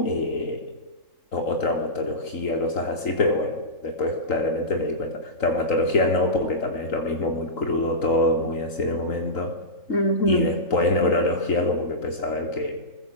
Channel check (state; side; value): late; right; 3.9 ms